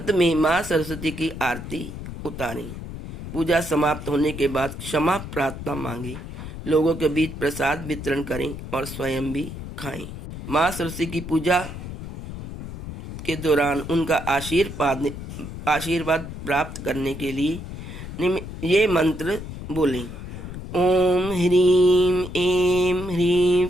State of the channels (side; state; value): left; noise; rumble, 9 dB below the sound